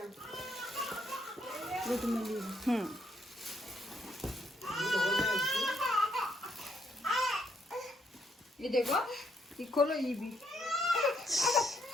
ये देखो ये खोलो ये भी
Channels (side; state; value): both; normal; correlation 0.73